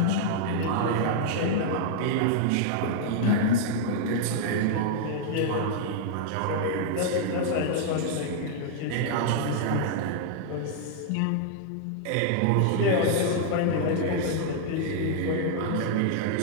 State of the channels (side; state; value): both; different; correlation -0.01